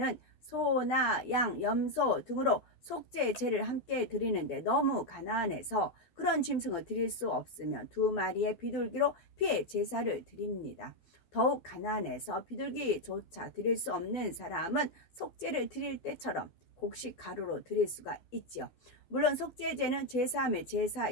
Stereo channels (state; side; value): late; right; 12 ms